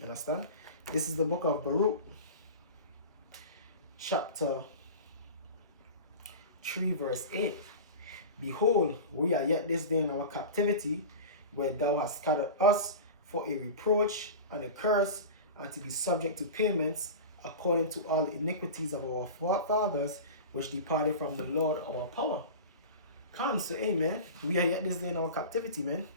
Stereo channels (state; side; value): inverted; both; correlation -0.31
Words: understand? This is the book of Baruch, chapter 3, verse 8. Behold, we are yet this day in our captivity, where thou hast scattered us for a reproach and a curse, and to be subject to payments, according to all the iniquities of our fathers, which departed from the Lord our power. Come, so amen. We are yet this day in our captivity, man.